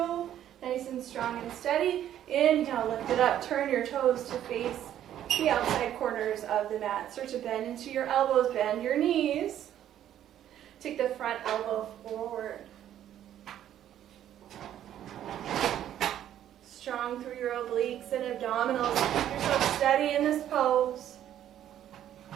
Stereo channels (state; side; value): quieter; left; 11.2 dB